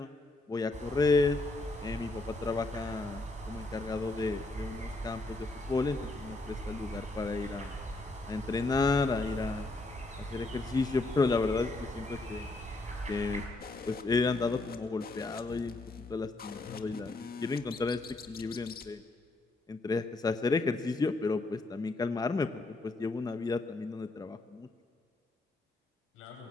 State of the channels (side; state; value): right; quieter; 3.1 dB